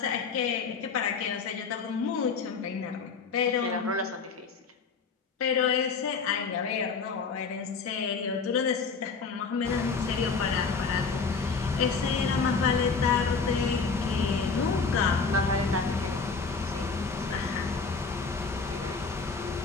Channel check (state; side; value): quieter; right; 5.0 dB